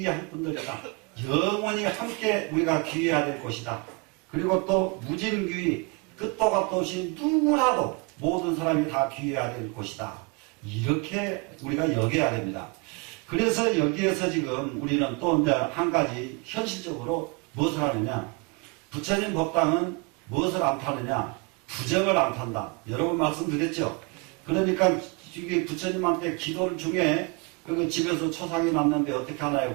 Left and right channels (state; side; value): quieter; left; 29.7 dB